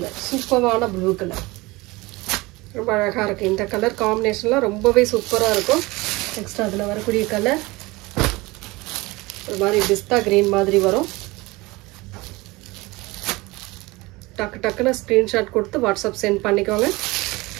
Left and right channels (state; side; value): quieter; left; 22.2 dB